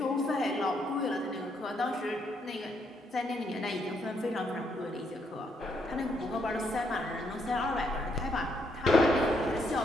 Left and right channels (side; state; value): both; normal; correlation 0.74